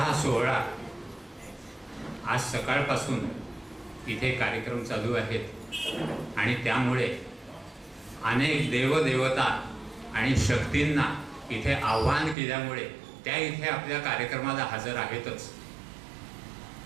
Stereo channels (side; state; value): left; drops out; at 12.4 s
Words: सोहळा आज सकाळपासून इथे कार्यक्रम चालू आहेत आणि त्यामुळे अनेक देवदेवता आणि शक्तींना इथे आव्हान केल्यामुळे त्या इथे आपल्या कार्यक्रमाला हजर आहेतच।